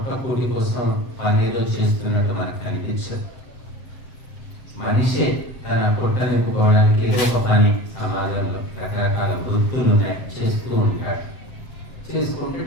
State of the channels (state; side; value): late; right; 7.7 ms